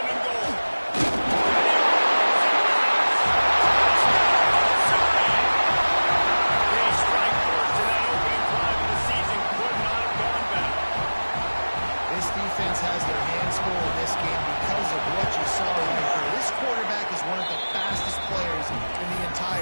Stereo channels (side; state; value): both; inverted; correlation -1.00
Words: and goal. They strike first in that opening drive of the season. Could not have gone better. This defense has their hands full in this game because of what you saw right here. This quarterback is one of the fastest players in the